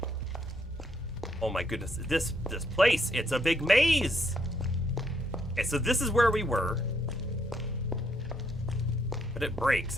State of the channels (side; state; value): both; normal; correlation 0.73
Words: Oh my goodness, this place, it's a big maze! Okay, so this is where we were. But it breaks,